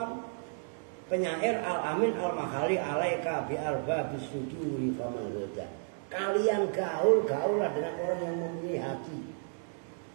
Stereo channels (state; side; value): silent; left; 56 dB below the other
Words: penyair al-amin al-makhali alaika bi arba bisuduri faman goda. Kalian gaul-gaulah dengan orang yang mempunyai hati.